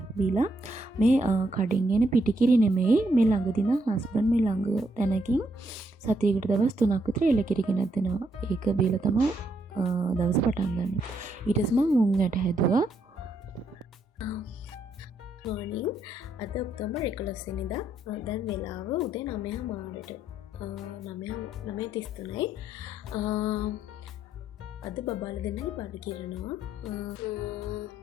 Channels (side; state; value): both; normal; correlation 0.75